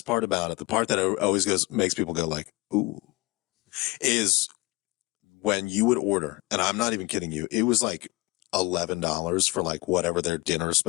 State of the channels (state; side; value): quieter; right; 22.3 dB